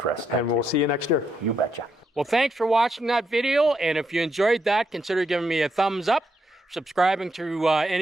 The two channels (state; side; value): normal; both; correlation 0.79